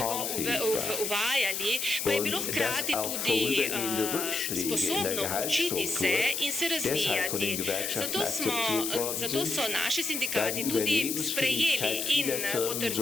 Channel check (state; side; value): noise; left; hiss, 2 dB below the sound